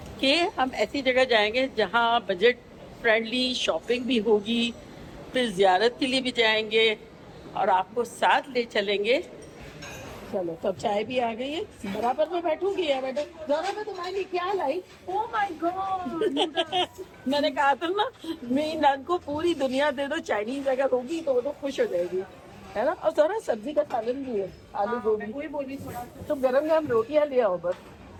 कि हम ऐसी जगह जाएंगे जहाँ बजट फ्रेंडली शॉपिंग भी होगी, फिर जियारत के लिए भी जाएंगे और आपको साथ ले चलेंगे। चलो, सब चाय भी आ गई है, बराबर में बैठूंगी यार। बेटा जरा मैं तुम्हारे लिए क्या लाई। ओह माय गॉड मैंने कहा था ना, मेरी नन को पूरी दुनिया दे दो, चाइनीज अगर होगी तो वो तो खुश हो जाएगी, है ना। और जरा सब्जी का सालन भी है, आलू गोभी। वही बोली थोड़ा तो गरम गरम रोटियां ले आओ बस।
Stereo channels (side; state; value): both; identical; correlation 1.00